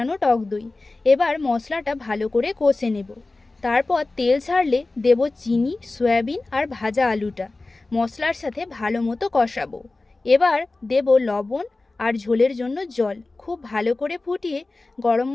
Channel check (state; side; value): quieter; right; 3.3 dB